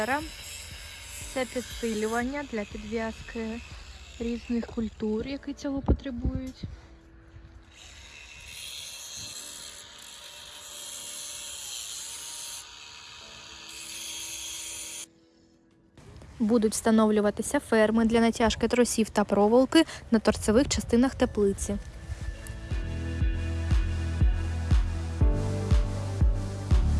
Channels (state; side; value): identical; both; correlation 1.00